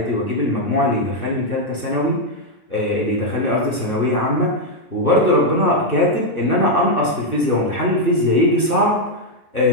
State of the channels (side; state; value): right; late; 1.2 ms